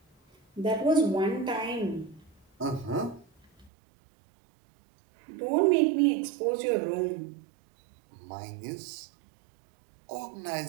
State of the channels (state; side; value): drops out; left; at 3.7 s